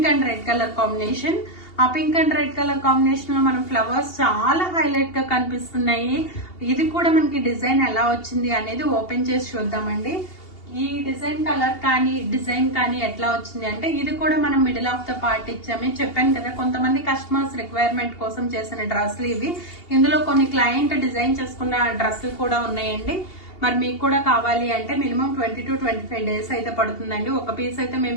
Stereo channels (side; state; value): right; late; 2.8 ms